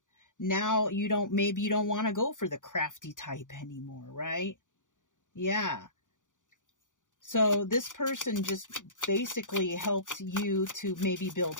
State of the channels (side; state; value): right; late; 0.87 ms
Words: Now maybe you don't want to go for the crafty type anymore, right? Yeah. So this person just basically helped you to maybe